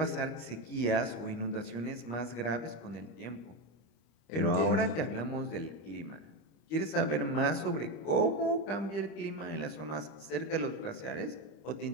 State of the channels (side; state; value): right; late; 25 ms